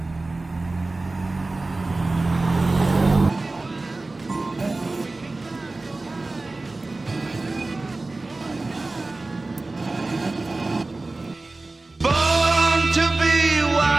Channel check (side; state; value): left; quieter; 3.2 dB